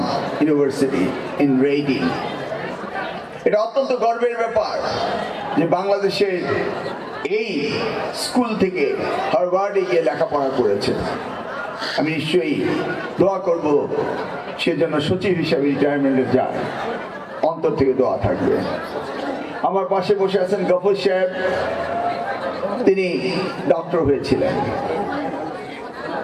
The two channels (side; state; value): both; identical; correlation 1.00